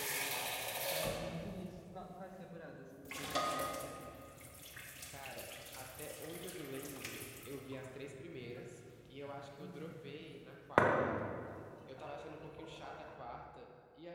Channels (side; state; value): both; identical; correlation 1.00